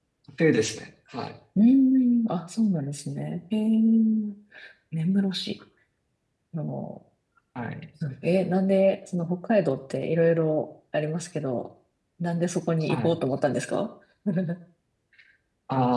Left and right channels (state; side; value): identical; both; correlation 1.00